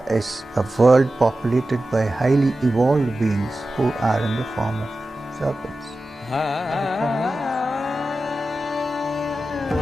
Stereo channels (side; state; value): both; normal; correlation 0.93